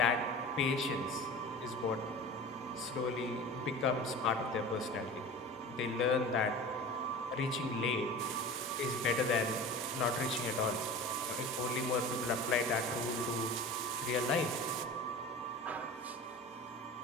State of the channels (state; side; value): normal; both; correlation 0.35